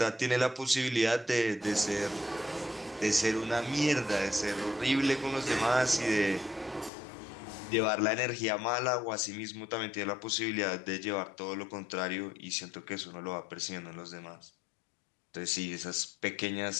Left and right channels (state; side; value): drops out; right; at 6.9 s